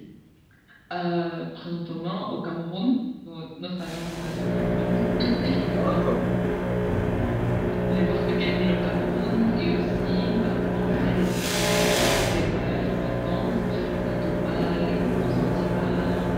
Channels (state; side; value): identical; both; correlation 1.00